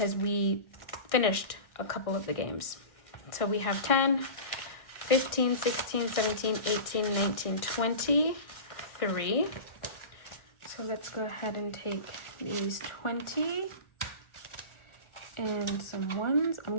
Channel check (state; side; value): late; right; 1.6 ms